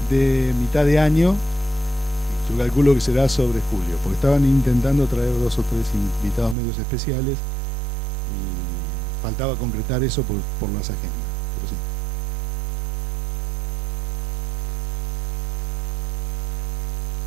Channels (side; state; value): left; drops out; at 6.6 s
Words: mitad de año, yo calculo que será sobre julio, porque estaban intentando traer 2 o 3 invitados medios especiales y faltaba concretar eso por las agendas, pero sí.